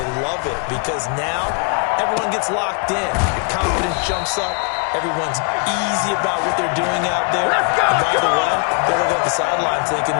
love it, because now everyone gets locked in. Your confidence jumps up. Everyone's easy about what they're doing out there. Let's go, and by the way, they're looking at the sideline thinking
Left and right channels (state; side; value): quieter; right; 39.0 dB